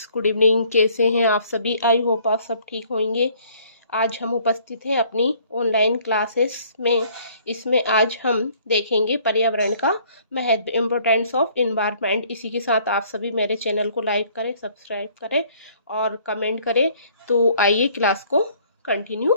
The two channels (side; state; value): both; inverted; correlation -0.59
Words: good evening. कैसे हैं आप सभी? आई होप आप सब ठीक होंगे। आज हम उपस्थित हैं अपनी ऑनलाइन क्लासेस में। इसमें आज हम देखेंगे पर्यावरण का महत्व, इम्पोर्टेंस ऑफ इन्वायरमेंट। इसी के साथ आप सभी मेरे चैनल को लाइक करें, सब्सक्राइब करें और कमेंट करें। तो आइए क्लास को कंटिन्यू